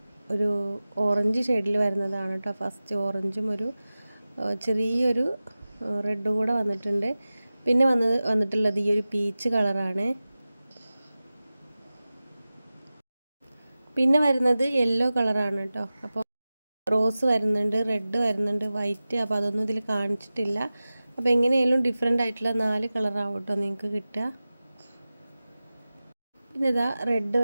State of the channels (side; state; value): both; inverted; correlation -0.96